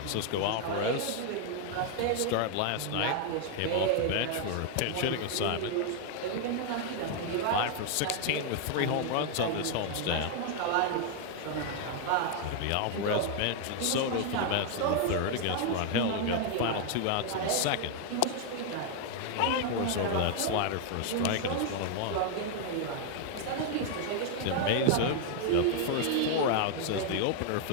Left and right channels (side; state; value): both; different; correlation 0.00